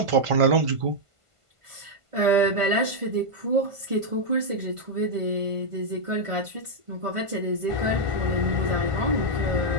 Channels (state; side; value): late; left; 1.5 ms